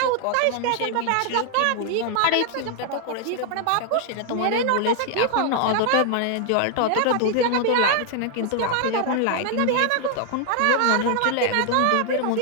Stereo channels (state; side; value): different; both; correlation 0.00